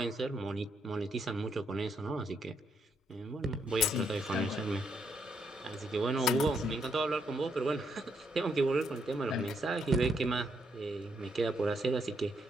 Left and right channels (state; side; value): normal; both; correlation 0.76